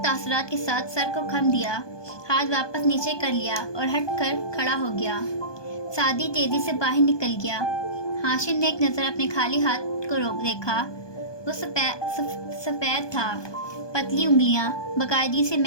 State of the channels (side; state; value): right; late; 1.2 ms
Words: तासुरात के साथ सर को खम दिया, हाथ वापस नीचे कर लिया और हट कर खड़ा हो गया। सादी तेजी से बाहर निकल गया। हाशिम ने एक नज़र अपने खाली हाथ को रोक देखा। वो सफ़ेद था, पतली उंगलियां, बाकायदगी से